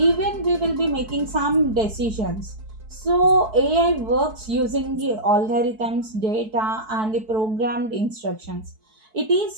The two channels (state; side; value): late; left; 4.6 ms